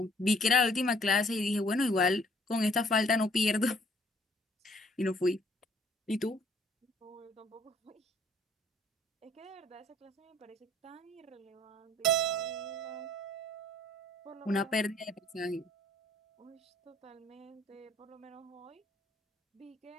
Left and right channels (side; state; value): both; normal; correlation 0.60